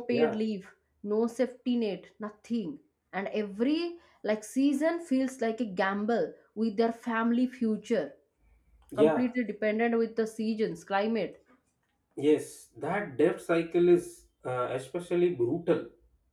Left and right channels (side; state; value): both; identical; correlation 1.00